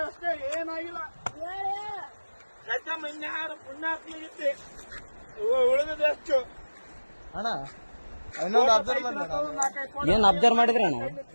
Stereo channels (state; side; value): inverted; both; correlation -1.00